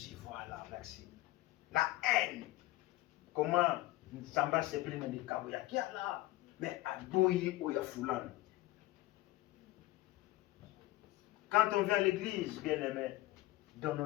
voilà, merci. La haine. Comment Samba se plaît dans des kaboyaki là, mais à Douyi ou Yafoulan. Quand on vient à l'église, bien aimé, donnons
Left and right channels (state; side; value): quieter; right; 17.8 dB